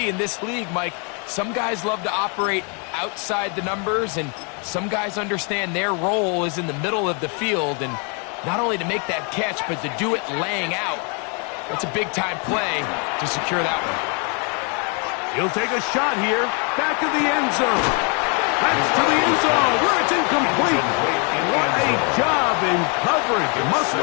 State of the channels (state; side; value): quieter; right; 36.1 dB